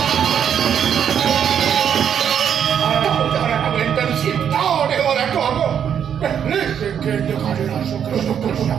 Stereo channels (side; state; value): left; quieter; 8.5 dB